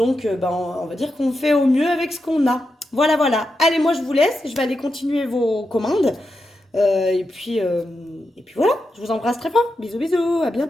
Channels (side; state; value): both; normal; correlation 0.87